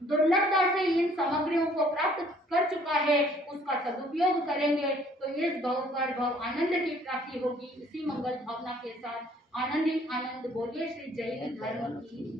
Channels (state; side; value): normal; both; correlation 0.59